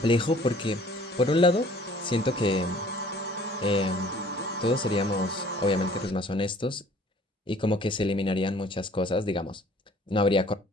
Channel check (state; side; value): normal; both; correlation 0.54